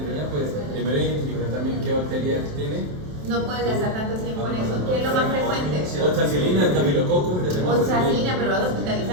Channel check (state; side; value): late; left; 27 ms